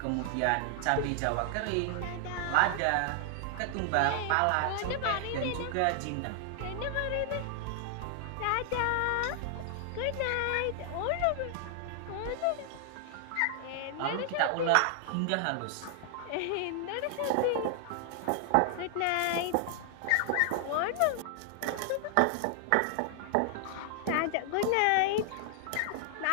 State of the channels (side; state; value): both; different; correlation 0.00